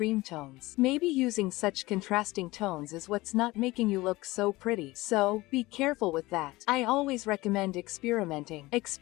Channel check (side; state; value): right; quieter; 20.1 dB